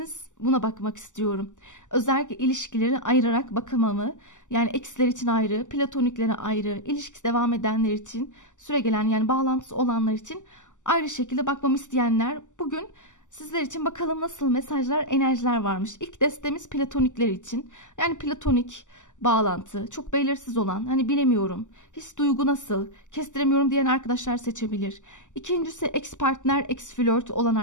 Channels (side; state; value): right; late; 0.86 ms